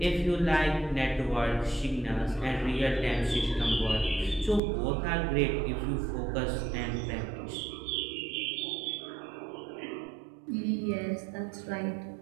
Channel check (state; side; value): drops out; left; at 4.6 s